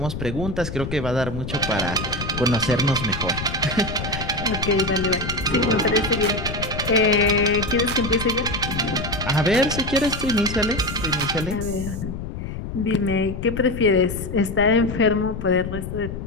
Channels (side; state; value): left; noise; rumble, 7 dB below the sound